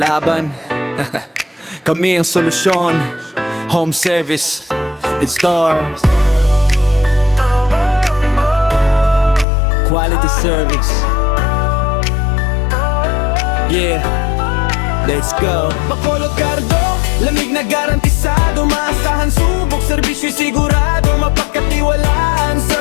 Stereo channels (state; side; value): drops out; right; at 9.5 s